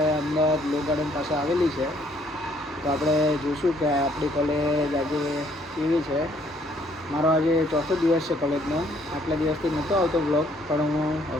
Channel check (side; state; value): both; normal; correlation 0.65